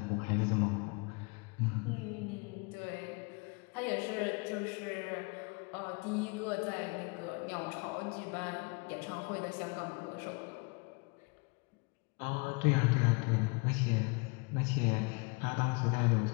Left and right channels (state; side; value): quieter; right; 30.8 dB